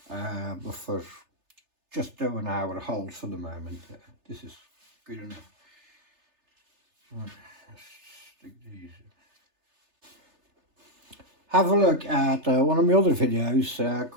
but for just doing our holes for the moment, this is good enough. Right, let's stick these in. Have a look at one of my other videos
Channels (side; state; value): left; late; 3.3 ms